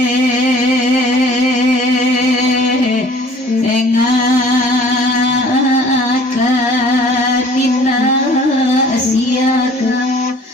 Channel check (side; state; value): both; normal; correlation 0.52